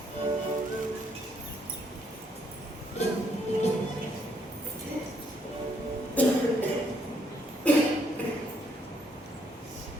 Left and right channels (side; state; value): both; normal; correlation 0.71